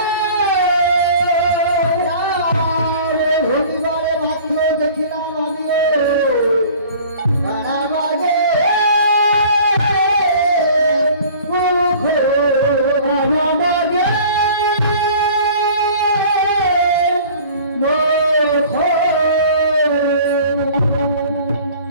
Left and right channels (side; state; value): both; inverted; correlation -0.47